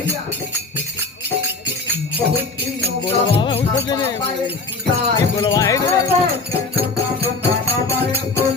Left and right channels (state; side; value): quieter; right; 3.7 dB